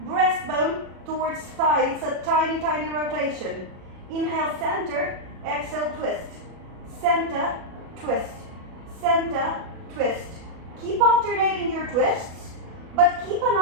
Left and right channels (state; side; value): late; left; 37 ms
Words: breastbone towards thigh. It's a tiny, tiny rotation. Inhale, center, exhale, twist. Center, twist. Center, twist. Keep alternating your twists, but keep an